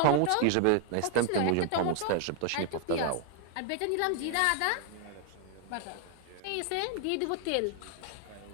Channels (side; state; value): both; different; correlation 0.00